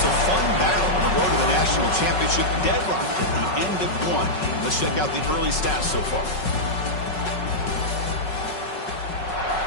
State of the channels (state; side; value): late; right; 5.4 ms